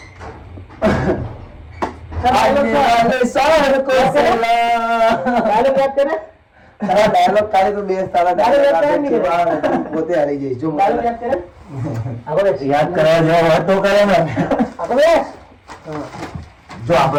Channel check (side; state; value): both; identical; correlation 1.00